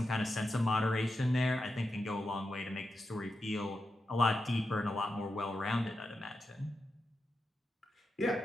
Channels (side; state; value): both; normal; correlation 0.88